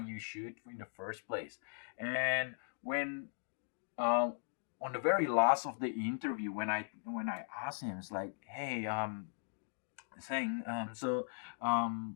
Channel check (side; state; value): right; silent; digital silence